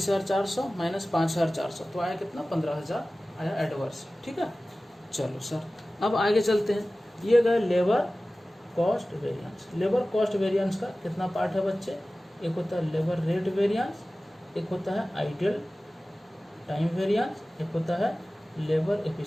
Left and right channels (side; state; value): both; normal; correlation 0.97